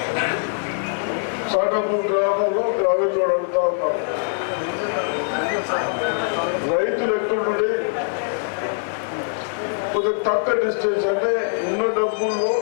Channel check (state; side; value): silent; right; 64 dB below the other